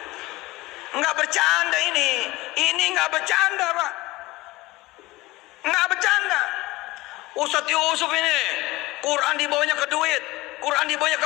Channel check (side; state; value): right; quieter; 19.9 dB